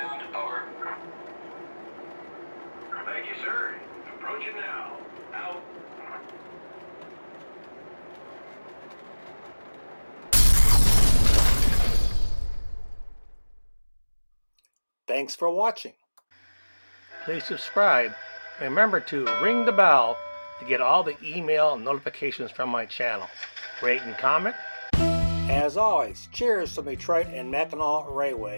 Over. Thank you, sir. Approaching now. Out. Thanks for watching. Please subscribe and remember to ring the bell to get all the email notifications from my channel. Rate and comment. As always, cheers from Detroit and Mackinac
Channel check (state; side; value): inverted; both; correlation -1.00